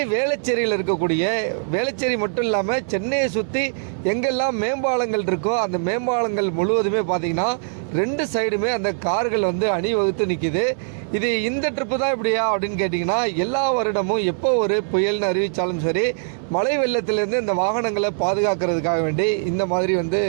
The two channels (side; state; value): left; silent; digital silence